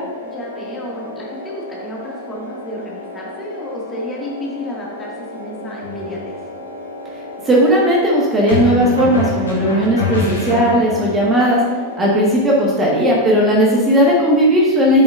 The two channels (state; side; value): normal; both; correlation 0.12